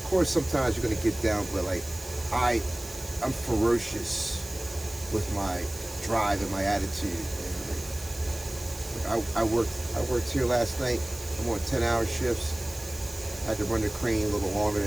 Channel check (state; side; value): noise; right; hiss, 16 dB below the sound